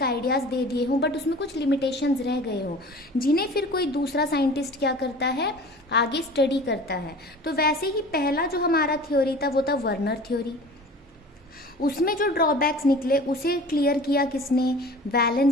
आइडियाज़ दे दिए हों, बट उसमें कुछ लिमिटेशंस रह गए हों, जिन्हें फिर कोई दूसरा साइंटिस्ट क्या करता है, आगे स्टडी करता है। तो वैसे ही पहला जो हमारा थ्योरी था वो था वर्नर थ्योरी। उसमें जो ड्रॉबैक्स निकले उसे क्लियर किया किसने?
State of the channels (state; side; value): normal; both; correlation 0.41